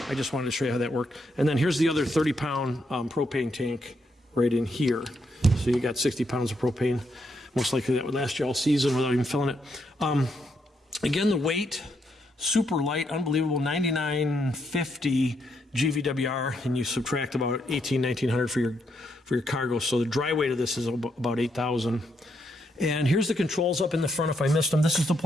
I just wanted to show you how that worked. And then here's the other 30-pound propane tank right in here. So you got 60 pounds of propane. Most likely that would last you all season without even filling it. Again, the weight, super light, unbelievable, 9950 GVWR, and you subtract about 1900 for your cargo. So the dry weight of this is about 8,000. And here's the controls up in the front if I missed them. This is the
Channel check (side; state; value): both; normal; correlation 0.78